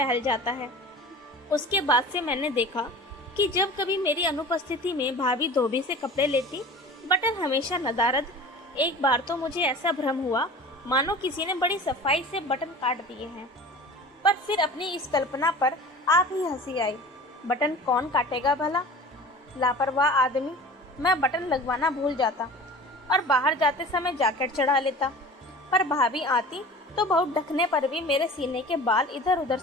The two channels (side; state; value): both; normal; correlation 0.39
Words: जाता है। उसके बाद से मैंने देखा कि जब कभी मेरी अनुपस्थिति में भाभी धोबी से कपड़े लेती, बटन हमेशा नदारद। एक बार तो मुझे ऐसा भ्रम हुआ मानो किसी ने बड़ी सफाई से बटन काट दिए हैं। पर फिर अपनी इस कल्पना पर आप ही हंसी आई। बटन कौन काटेगा भला? लापरवाह आदमी। मैं बटन लगवाना भूल जाता और बाहर जाते समय जैकेट चढ़ा लेता, पर भाभी आती तो बहुत ढकने पर भी मेरे सीने के बाल इधर उधर